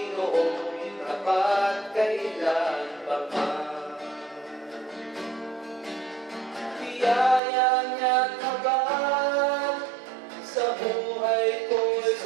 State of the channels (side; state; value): left; drops out; at 7.4 s